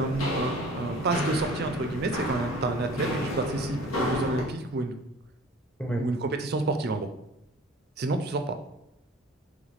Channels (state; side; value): normal; both; correlation 0.46